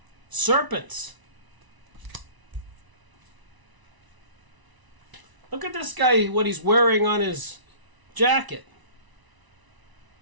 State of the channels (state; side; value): late; left; 1.0 ms